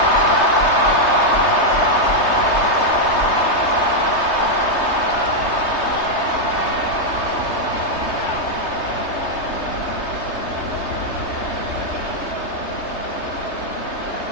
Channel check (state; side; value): late; right; 3.3 ms